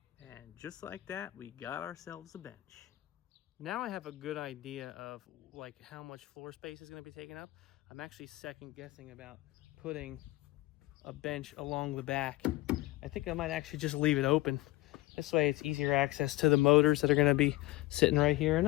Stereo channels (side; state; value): right; quieter; 18.4 dB